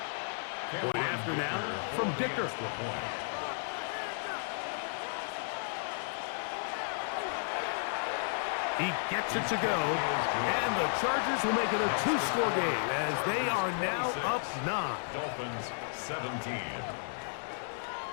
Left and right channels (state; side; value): silent; right; 56 dB below the other